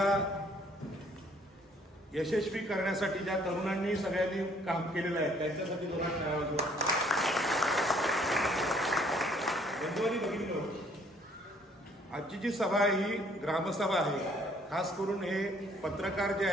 यशस्वी करण्यासाठी ज्या तरुणांनी सगळ्यांनी काम केलेलं आहे त्यांच्यासाठी दोघांना बघितलं. आजची जी सभा आहे ही ग्रामसभा आहे. खास करून हे पत्रकार जे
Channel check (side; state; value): both; normal; correlation 0.62